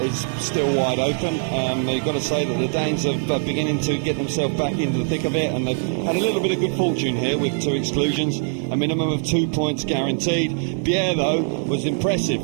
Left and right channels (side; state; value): left; silent; 64 dB below the other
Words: is still wide open. You've got to say that the Danes are beginning to get themselves back into the thick of it, and they've had a little bit of good fortune here with 2 exclusions. A minimum of 2 points guaranteed. Pierre, though, was impressive